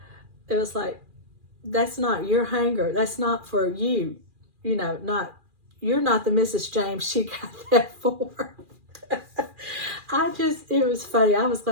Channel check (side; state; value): left; late; 2.4 ms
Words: It was like, that's not your hanger. That's not for you. You're not the Mrs. James she got that for. It was funny. I was